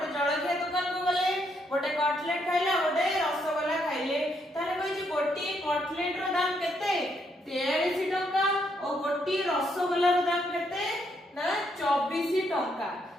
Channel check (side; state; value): both; normal; correlation 0.75